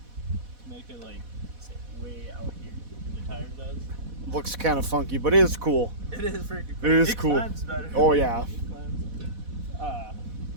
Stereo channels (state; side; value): late; left; 4.1 ms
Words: make it like way out here. The tire does. Looks kind of funky, but it is cool. It is freaking cool. It is cool. Climbs better. Oh yeah. It climbs.